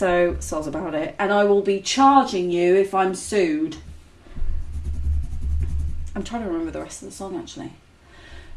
soz about it. And I will be charging you if I'm sued. I'm trying to remember the rest of the song actually.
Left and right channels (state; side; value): identical; both; correlation 1.00